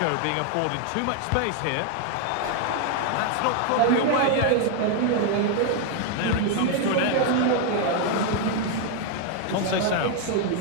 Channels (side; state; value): both; different; correlation 0.00